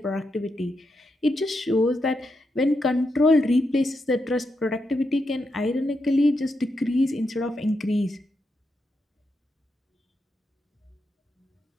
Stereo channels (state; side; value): normal; both; correlation 0.84